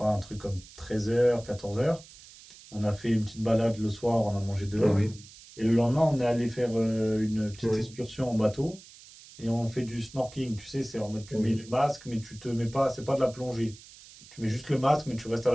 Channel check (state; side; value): noise; right; hiss, 20 dB below the sound